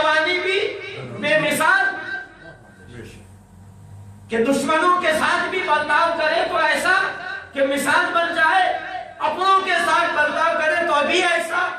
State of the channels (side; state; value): both; identical; correlation 1.00